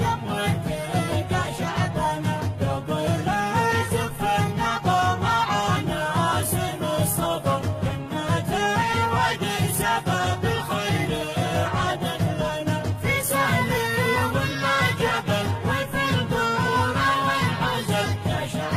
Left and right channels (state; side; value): identical; both; correlation 1.00